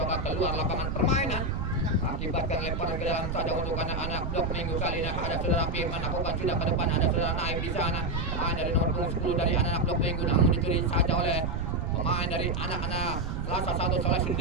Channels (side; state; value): right; noise; rumble, 2 dB below the sound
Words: keluar lapangan permainan. Akibatkan lemparan ke dalam saja untuk anak-anak Blok Minggu. Kali ini ada Saudara Firman lakukan sudah ke depan, ada Saudara Naib di sana, pemain dari nomor punggung 10 dari anak-anak Blok Minggu, namun dicuri saja oleh pemain dari anak-anak Selasa 1 Soleh